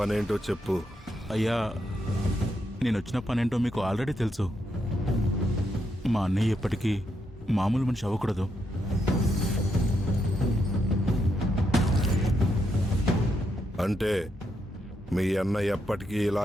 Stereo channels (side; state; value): both; normal; correlation 0.80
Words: చెప్పు. అయ్యా, నేను వచ్చిన పనేంటో మీకు ఆల్రెడీ తెలుసు. మా అన్నయ్య ఎప్పటికీ మామూలు మనిషి అవ్వకూడదు. అంటే మీ అన్న ఎప్పటికీ